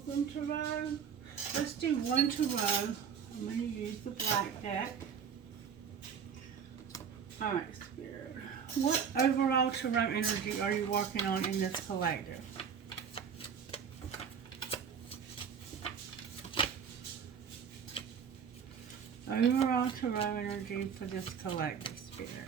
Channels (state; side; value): quieter; left; 7.1 dB